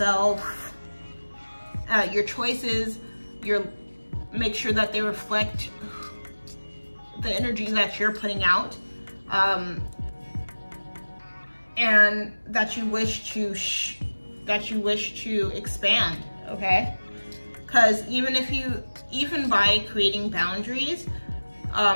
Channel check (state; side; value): inverted; both; correlation -1.00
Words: your choices, make sure that they reflect the energy that you're putting out, and that you wish to expand, okay? Because even by creating boundaries